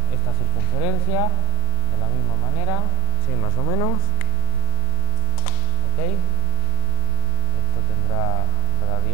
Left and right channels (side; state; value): left; late; 38 ms